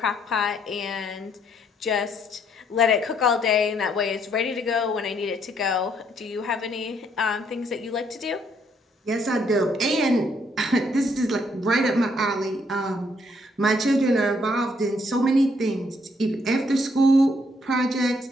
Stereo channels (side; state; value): both; normal; correlation 0.70